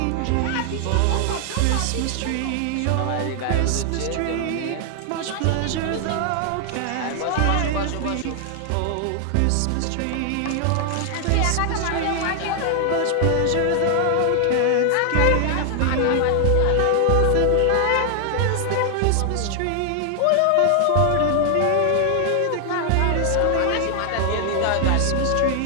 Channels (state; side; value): different; both; correlation 0.00